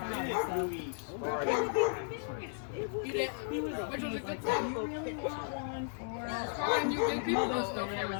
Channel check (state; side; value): silent; right; 54 dB below the other